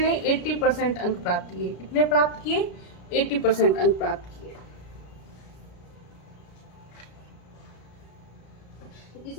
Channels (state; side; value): late; right; 33 ms